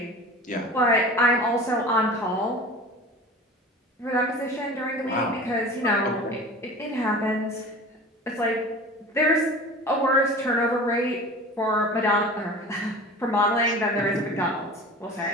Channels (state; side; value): normal; both; correlation 0.38